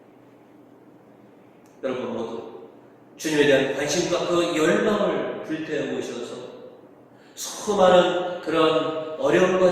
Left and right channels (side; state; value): both; identical; correlation 1.00